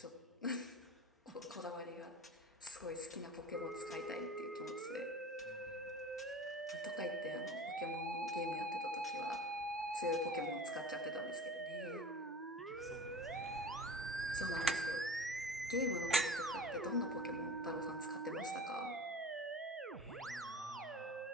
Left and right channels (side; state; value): both; normal; correlation 0.37